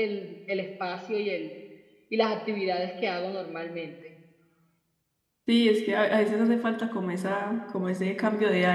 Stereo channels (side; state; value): both; identical; correlation 1.00